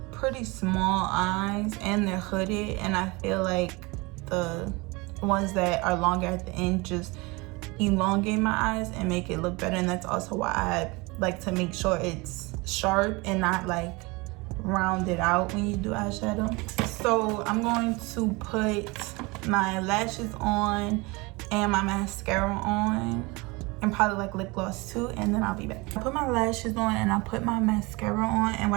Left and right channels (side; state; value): left; quieter; 25.4 dB